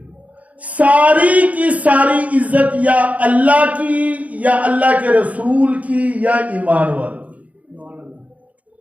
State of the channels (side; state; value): left; late; 0.070 ms